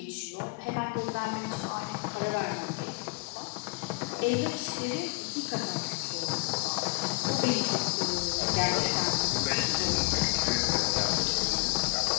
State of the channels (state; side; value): quieter; right; 32.1 dB